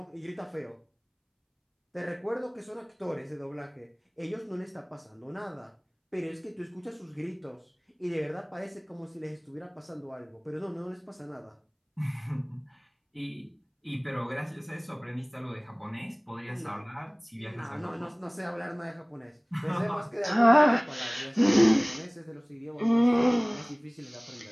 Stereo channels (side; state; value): both; identical; correlation 1.00